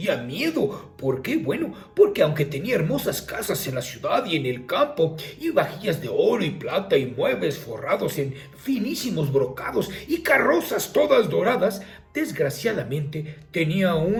miedo. ¿Por qué? Bueno, porque aunque tenía hermosas casas en la ciudad y en el campo, y vajillas de oro y plata y muebles forrados en finísimos brocados y carrozas todas doradas, desgraciadamente tenía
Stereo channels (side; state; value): both; identical; correlation 1.00